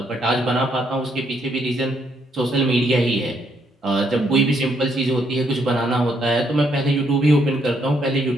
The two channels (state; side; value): normal; both; correlation 0.73